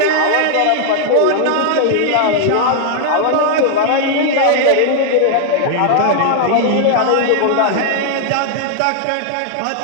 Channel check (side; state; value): both; different; correlation 0.00